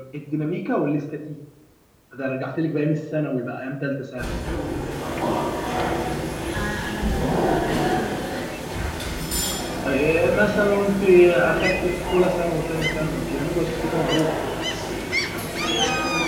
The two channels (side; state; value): both; identical; correlation 1.00